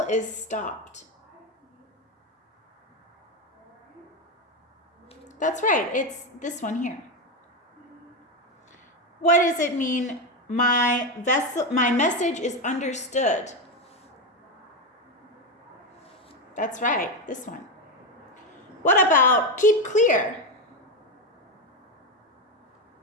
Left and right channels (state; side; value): normal; both; correlation 0.12